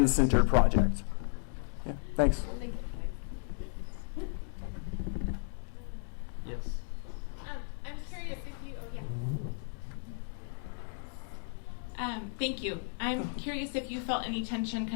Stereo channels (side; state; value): right; silent; 55 dB below the other